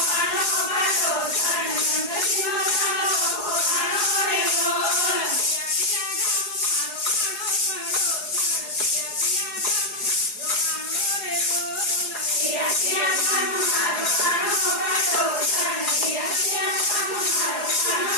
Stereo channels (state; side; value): late; right; 4.8 ms